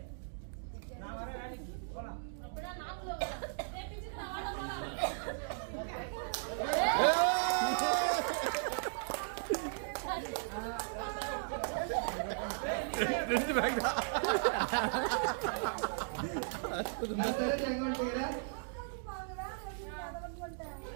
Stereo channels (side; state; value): left; silent; digital silence